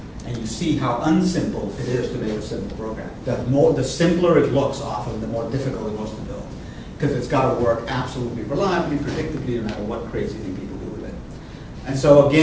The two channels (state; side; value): identical; both; correlation 1.00